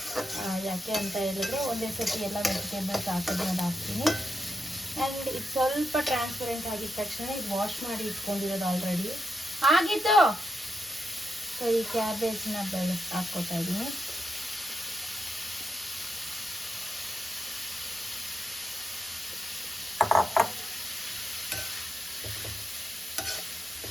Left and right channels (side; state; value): both; normal; correlation 0.85